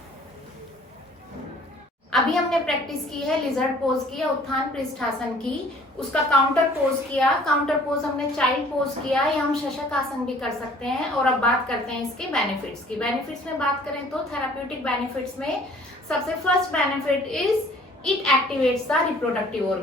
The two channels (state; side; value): normal; both; correlation 0.54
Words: अभी हमने practice की है lizard pose की या उत्थान पृष्ठासन की, उसका काउंटर पोज किया। काउंटर पोज हमने चाइल्ड पोज किया, या हम शशक आसन भी कर सकते हैं। और अब बात करते हैं इसके बेनिफिट्स की। बेनिफिट्स में बात करें तो थेराप्यूटिक बेनिफिट्स में सबसे first benefit is it activates the reproductive